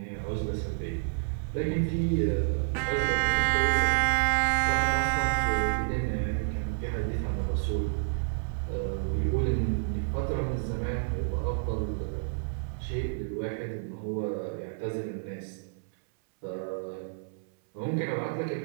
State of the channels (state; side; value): silent; left; 58 dB below the other